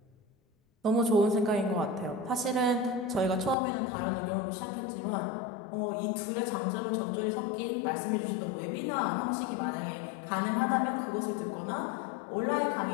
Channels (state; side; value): drops out; right; at 3.6 s